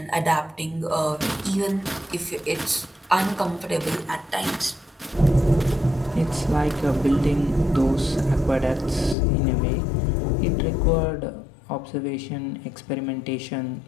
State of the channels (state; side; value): drops out; right; at 9.2 s